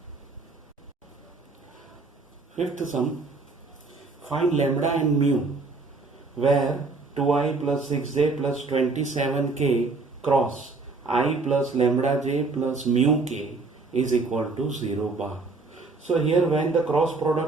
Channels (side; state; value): left; quieter; 3.8 dB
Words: Find lambda and mu where 2i plus 6j plus 27k cross I plus lambda j plus mu k is equal to 0 bar. So here when the cross